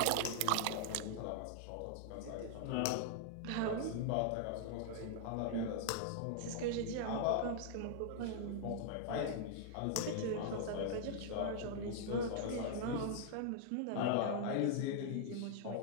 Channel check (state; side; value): different; both; correlation -0.01